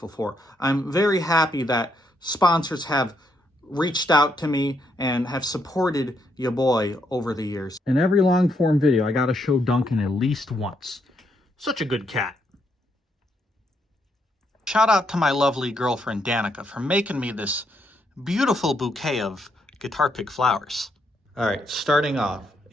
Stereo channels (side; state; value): both; normal; correlation 0.76